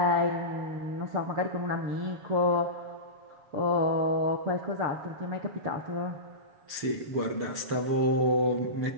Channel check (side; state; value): left; late; 7.2 ms